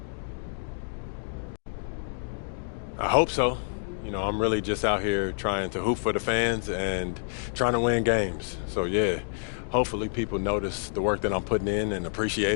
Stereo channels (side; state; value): right; silent; digital silence